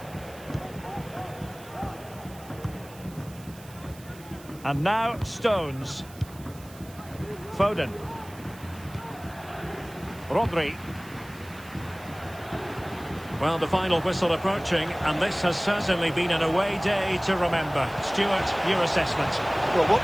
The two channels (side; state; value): right; noise; hiss, 21 dB below the sound